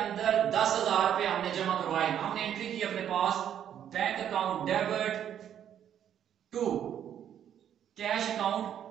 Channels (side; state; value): left; quieter; 9.7 dB